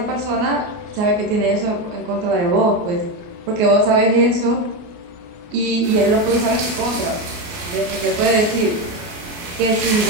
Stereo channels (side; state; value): left; late; 29 ms